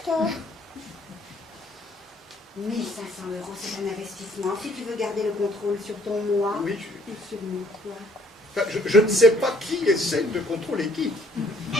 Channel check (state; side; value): normal; both; correlation 0.63